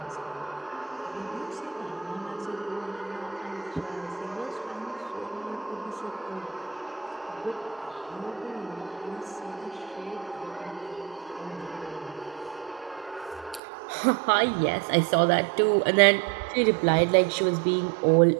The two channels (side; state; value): left; drops out; at 13.6 s